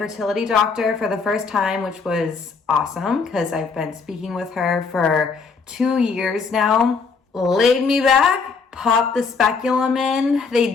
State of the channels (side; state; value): right; quieter; 4.9 dB